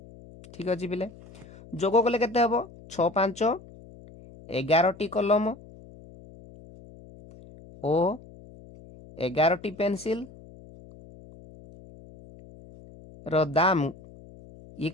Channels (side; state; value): left; noise; hum, 21 dB below the sound